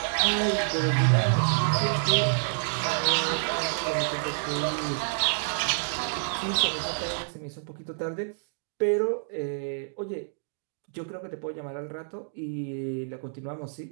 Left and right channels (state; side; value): silent; left; digital silence